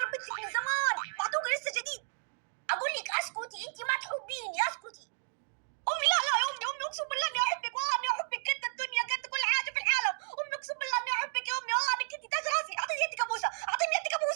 انا بنتك من زمان، معتوقه لسه جديد. اقول لك اسكتي، انت ما تحبيني، اسكتي. امي لا يا امي اقسم بالله اني احبك، والله اني احبك قد الدنيا قد كل حاجه في العالم. امي اقسم بالله اني احبك يا امي، والله انك انت تاج راسي. اعطيني يدك ابوسه، اعطيني يدك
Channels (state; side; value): silent; left; digital silence